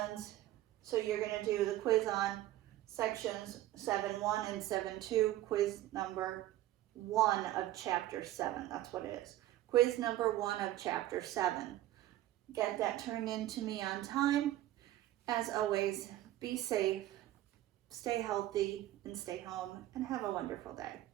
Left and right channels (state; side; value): quieter; left; 14.5 dB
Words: so you're going to do the quiz on sections 7-1 and 7-2, quiz number 1 of chapter 7. That's what it is. Quiz number 1 of chapter 7. Get that turned in to me on time. As always, be safe, stay healthy, and stay home, and have a wonderful day.